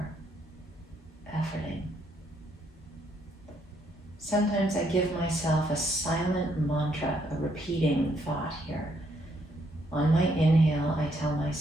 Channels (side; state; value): both; normal; correlation 0.72